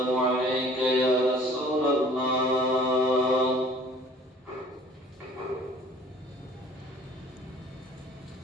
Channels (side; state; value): both; normal; correlation 0.51